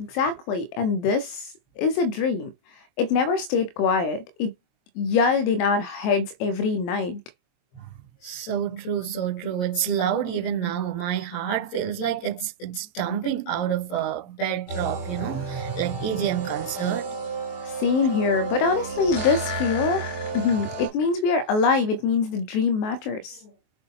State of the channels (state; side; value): late; right; 22 ms